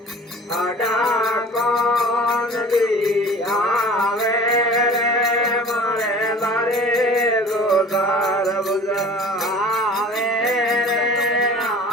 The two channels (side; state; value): both; normal; correlation 0.44